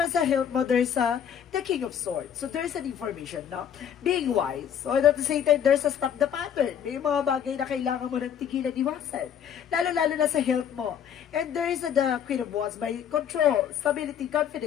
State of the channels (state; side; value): quieter; right; 8.7 dB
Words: sa health mo, there's the King of Swords. So, there's an information, no? Being wise. So, at the same time, there's a stop the pattern. May mga bagay na kailangan mo ng tigilan, iwasan. Lalo-lalo na sa health mo. And there is the Queen of Wands by control, stability,